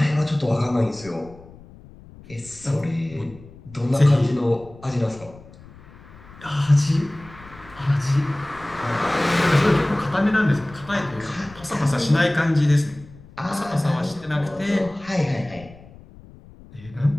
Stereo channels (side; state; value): left; noise; rumble, 21 dB below the sound